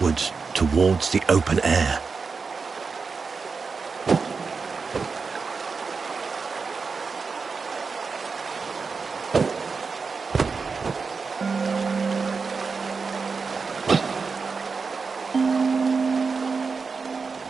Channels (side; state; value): left; quieter; 4.9 dB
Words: towards the open air.